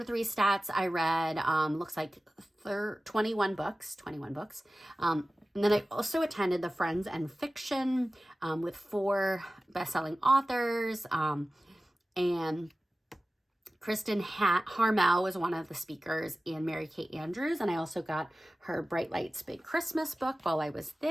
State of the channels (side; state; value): both; normal; correlation 0.96